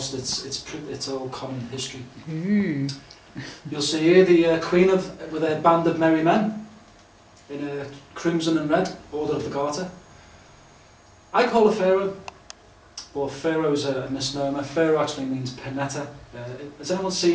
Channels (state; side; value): identical; both; correlation 1.00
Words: It's all common history. You'll see here the Queen with a band of merry men in a crimson and red Order of the Garter. I call her Pharaoh, but Pharaoh is a misnomer. Pharaoh actually means Penetta. Has anyone